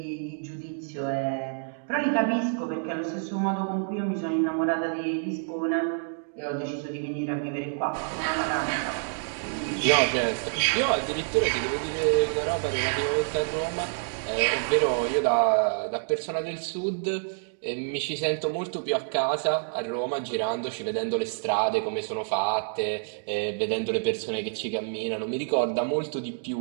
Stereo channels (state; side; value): silent; left; digital silence